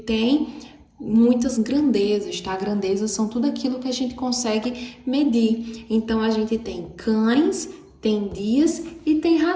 muitas grandezas, tá? Grandezas são tudo aquilo que a gente consegue medir. Então, a gente tem cães, tem dias e tem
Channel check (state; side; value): identical; both; correlation 1.00